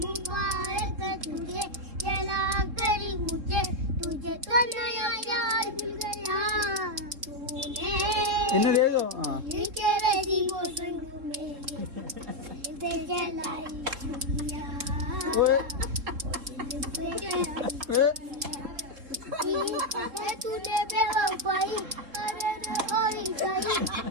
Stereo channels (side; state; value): left; late; 3.7 ms